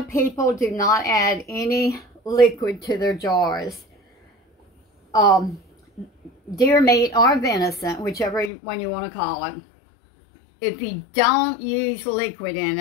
people do not add any liquid to their jars. Deer meat or venison, whichever one you want to call it, if you don't use liquid in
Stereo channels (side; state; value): right; drops out; at 8.5 s